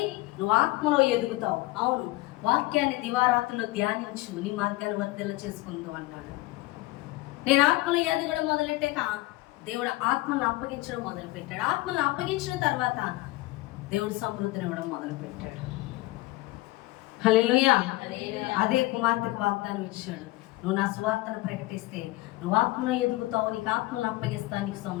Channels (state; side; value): quieter; right; 19.6 dB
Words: నువ్వు ఆత్మలో ఎదుగుతావు. అవును, వాక్యాన్ని దివారాత్రులు ధ్యానించు, నీ మార్గాన్ని వర్ధిల్ల చేసుకుంటూ అన్నాడు. నేను ఆత్మలో ఎదగడం మొదలెట్టాక దేవుడు ఆత్మను అప్పగించడం మొదలుపెట్టాడు. ఆత్మను అప్పగించిన తర్వాత దేవుడు సమృద్ధిని ఇవ్వడం మొదలుపెట్టాడు. హల్లెలూయా. అదే కుమార్తెకు వాగ్దానం ఇచ్చాడు. నువ్వు నా సువార్తను ప్రకటిస్తే నువ్వు ఆత్మలో ఎదుగుతావు, నీకు ఆత్మను అప్పగిస్తాను, నీకు